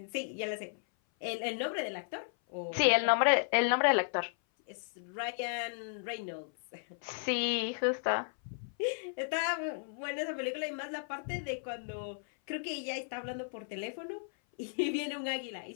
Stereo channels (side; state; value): right; silent; 55 dB below the other